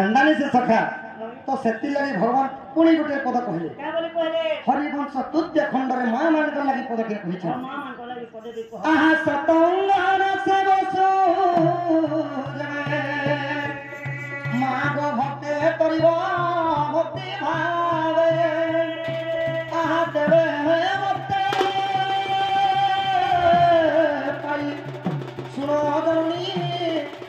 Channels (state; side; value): identical; both; correlation 1.00